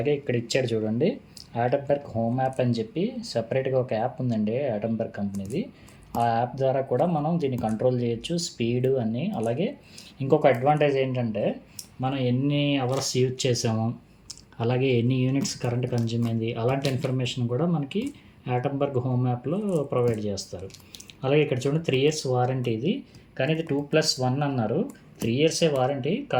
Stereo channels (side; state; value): both; identical; correlation 1.00